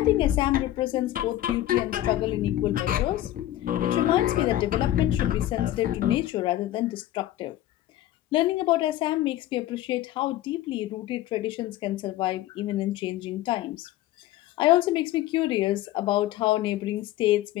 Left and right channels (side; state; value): right; quieter; 14.2 dB